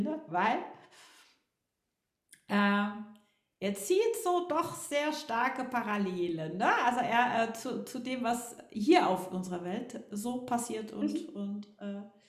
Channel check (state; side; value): identical; both; correlation 1.00